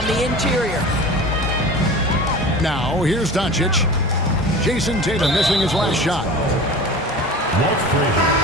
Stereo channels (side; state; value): both; normal; correlation 0.36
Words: the interior. Now, here's Doncic. Jason Tatum missing his last shot. Walt Frazier.